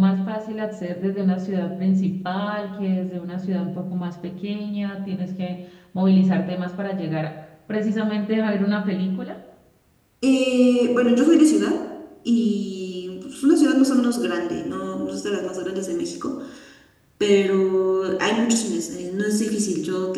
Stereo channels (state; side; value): identical; both; correlation 1.00